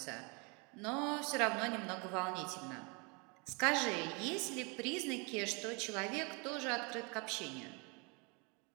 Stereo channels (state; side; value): quieter; left; 31.2 dB